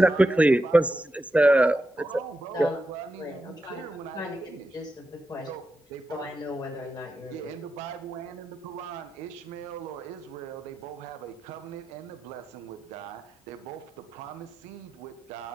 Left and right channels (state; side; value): normal; both; correlation 0.88